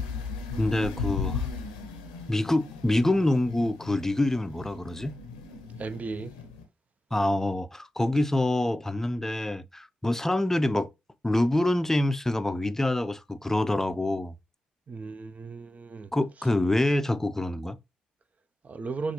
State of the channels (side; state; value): both; normal; correlation 0.93